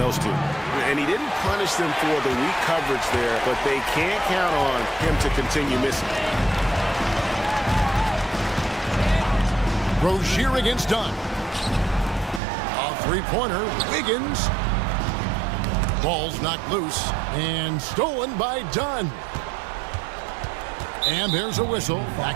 two. And he didn't punish them for the weak coverage there, but they can't count on him to continue missing. Rozier against Dunn. A three-pointer. Wiggins. Ball's knocked loose and stolen by Dunn. And there's a whistle.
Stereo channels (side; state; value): left; drops out; at 12.4 s